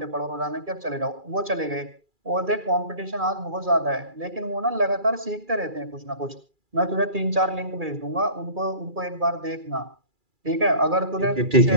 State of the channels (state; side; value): late; left; 2.4 ms